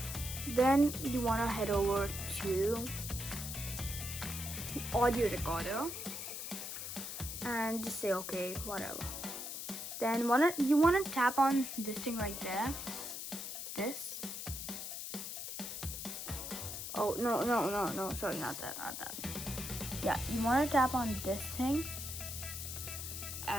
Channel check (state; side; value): noise; left; hiss, 6 dB below the sound